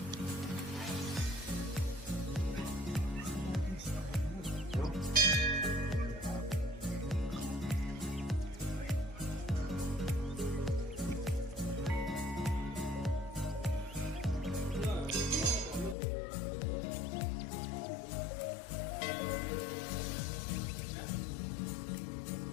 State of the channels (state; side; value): drops out; right; at 16.0 s